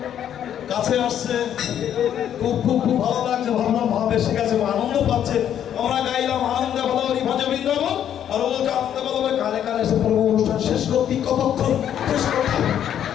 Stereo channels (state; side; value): quieter; right; 9.9 dB